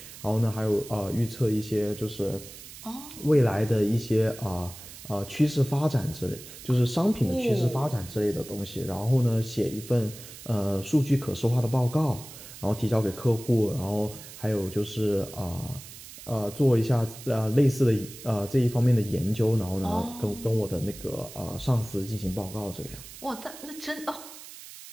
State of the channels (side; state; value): right; noise; hiss, 15 dB below the sound